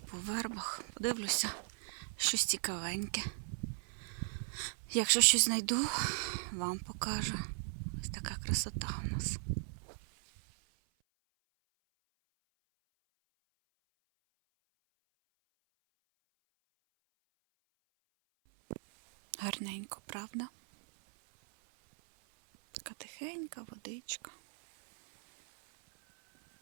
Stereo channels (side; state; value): left; silent; 53 dB below the other